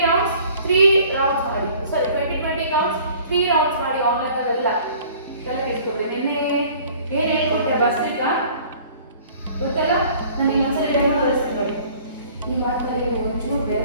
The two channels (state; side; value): inverted; both; correlation -0.51